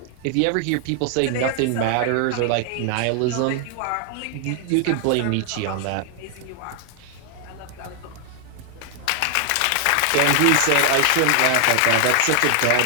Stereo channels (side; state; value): both; different; correlation 0.00